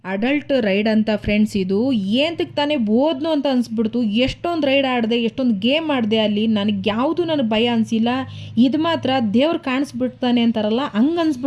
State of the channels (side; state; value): both; identical; correlation 1.00